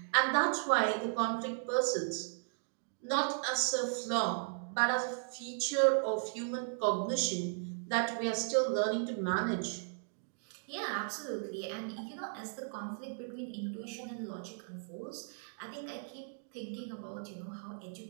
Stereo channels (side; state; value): left; silent; digital silence